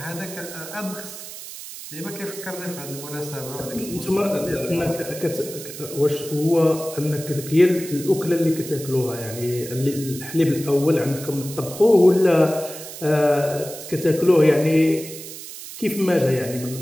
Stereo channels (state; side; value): noise; right; hiss, 12 dB below the sound